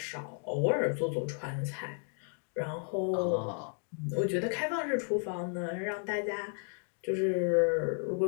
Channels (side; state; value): right; silent; 56 dB below the other